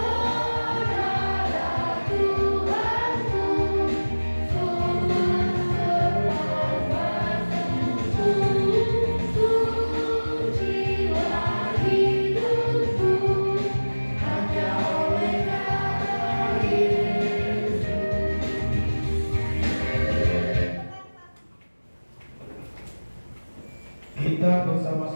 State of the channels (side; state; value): both; inverted; correlation -1.00